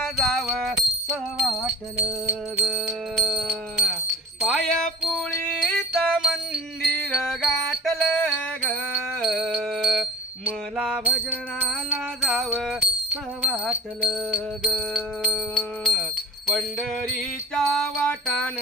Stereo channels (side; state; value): both; normal; correlation 0.38